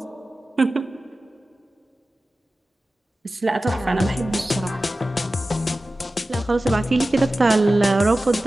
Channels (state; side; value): normal; both; correlation 0.95